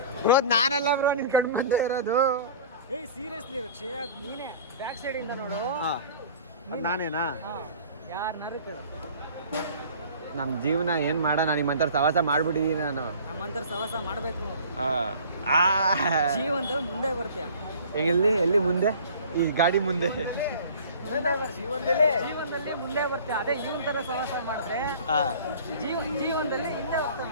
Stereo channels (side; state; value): both; inverted; correlation -0.45